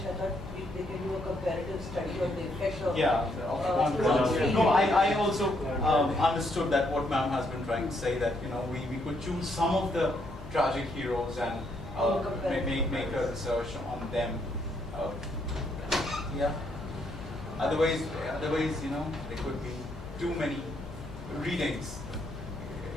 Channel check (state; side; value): noise; left; hum, 14 dB below the sound